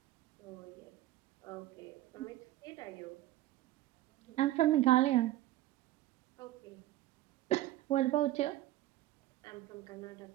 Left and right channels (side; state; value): left; quieter; 15.4 dB